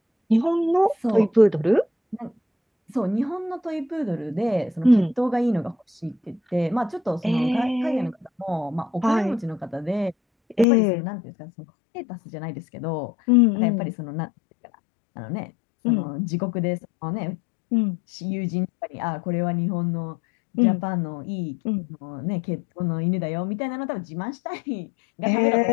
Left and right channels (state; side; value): drops out; right; at 10.7 s